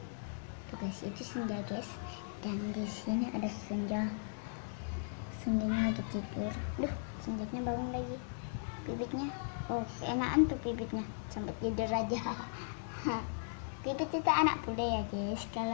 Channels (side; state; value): right; silent; digital silence